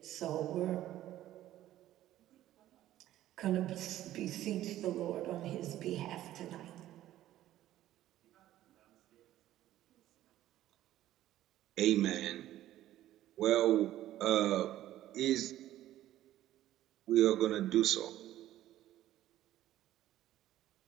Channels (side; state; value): left; quieter; 13.6 dB